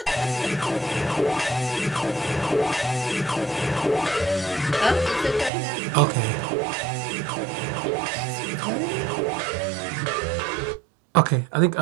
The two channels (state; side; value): drops out; left; at 5.5 s